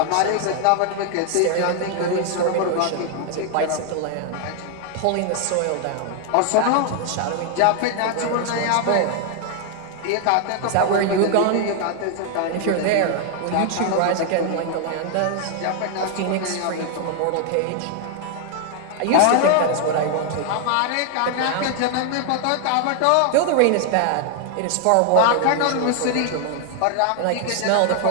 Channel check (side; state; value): both; different; correlation 0.00